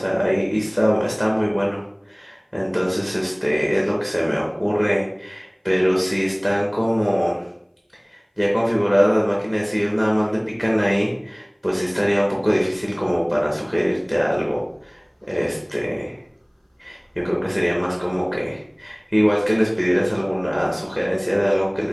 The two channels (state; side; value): identical; both; correlation 1.00